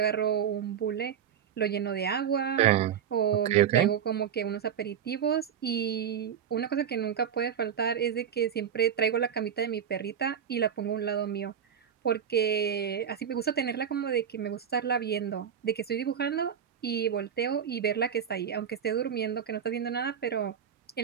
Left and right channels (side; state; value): left; quieter; 8.4 dB